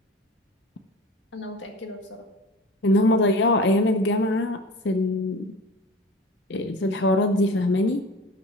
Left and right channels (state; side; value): normal; both; correlation 0.37